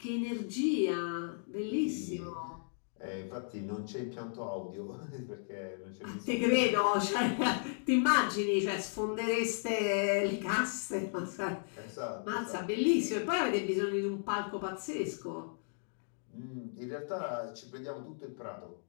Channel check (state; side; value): silent; right; digital silence